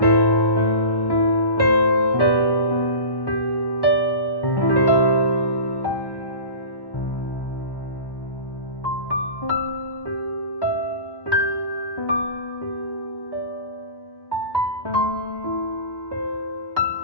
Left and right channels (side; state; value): right; late; 1.1 ms